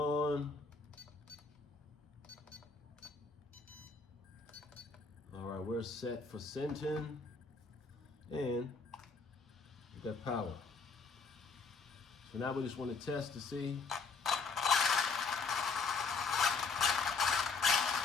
All right, we're set for Senton, and we got power. So now we just want to test to see.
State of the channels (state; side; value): quieter; right; 4.7 dB